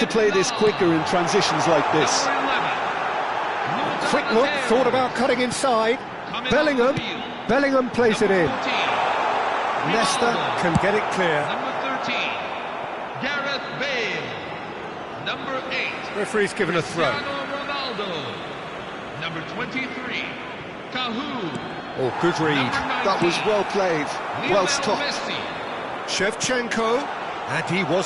play this quicker in transitions like this. Quick look, thought about cutting inside. Bellingham. Bellingham plays it in. Leicester can get it clear. Number 13, Gareth Bale. Number 8, Referee's given a throw. Cristiano Ronaldo. Number 23, Cahoon. Oh, good read. That was well played, well stopped. Messi. Shevchenko, and he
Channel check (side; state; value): both; identical; correlation 1.00